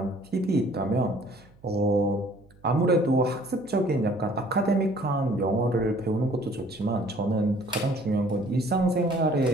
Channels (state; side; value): noise; right; hum, 28 dB below the sound